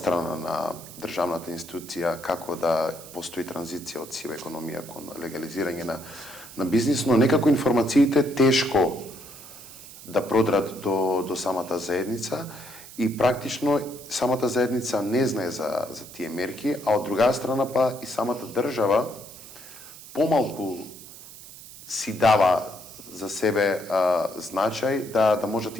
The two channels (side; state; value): right; noise; hiss, 16 dB below the sound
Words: на државната институција како да постои транзиција од сива економија кон легализирање на бизнис, но некако информациите тешко да продрат до самата заедница и практично самата заедница не знае за тие мерки, а од друга страна па и самата држава помалку си дава за себе значај да можат